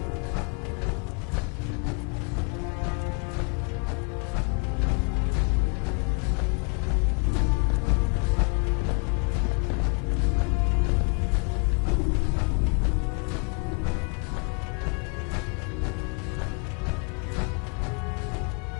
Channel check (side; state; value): right; quieter; 35.8 dB